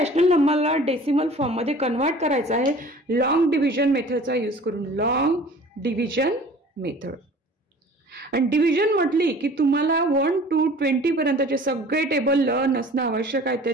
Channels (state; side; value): normal; both; correlation 0.46